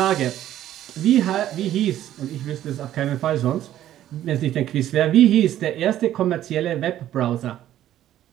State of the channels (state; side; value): quieter; left; 12.4 dB